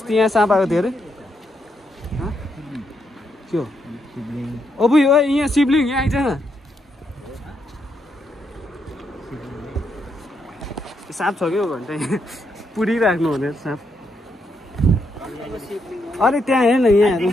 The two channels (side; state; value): both; normal; correlation 0.79